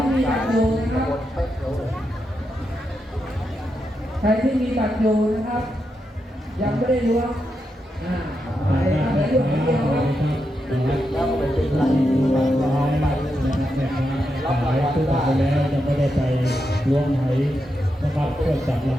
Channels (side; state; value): both; normal; correlation 0.85